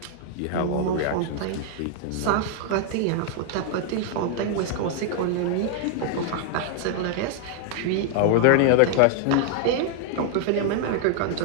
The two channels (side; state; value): both; different; correlation 0.00